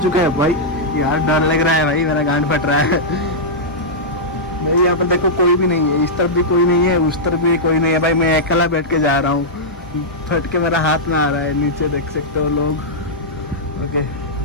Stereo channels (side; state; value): both; normal; correlation -0.10